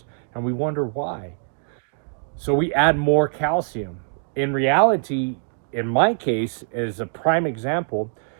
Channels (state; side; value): silent; left; digital silence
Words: and we wonder why. So we add more calcium. In reality, in my case, as a prime example,